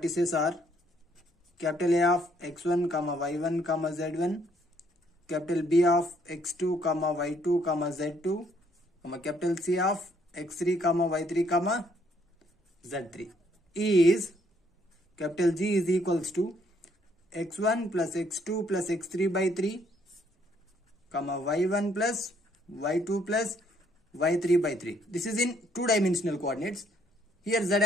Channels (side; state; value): both; normal; correlation 0.68